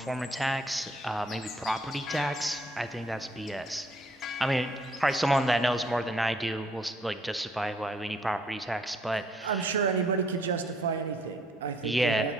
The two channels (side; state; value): both; normal; correlation 0.65